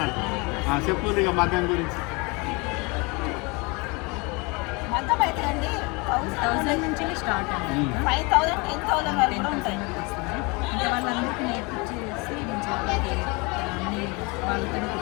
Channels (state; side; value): quieter; right; 28.1 dB